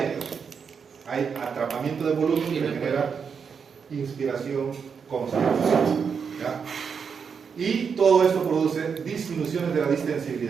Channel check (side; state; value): left; quieter; 6.3 dB